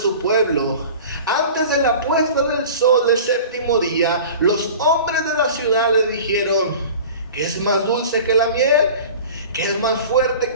pueblo. Antes de la puesta del sol del 7º día, los hombres de la ciudad le dijeron: ¿qué es más dulce que la miel? ¿Qué es más fuerte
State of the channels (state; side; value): inverted; both; correlation -0.39